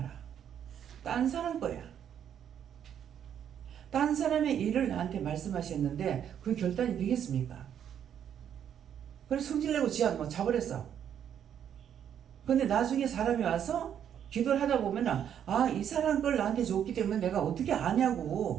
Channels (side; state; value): left; quieter; 9.2 dB